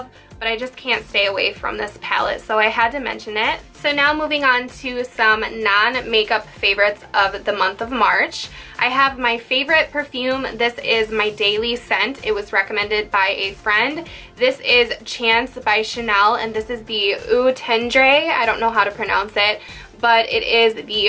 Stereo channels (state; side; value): identical; both; correlation 1.00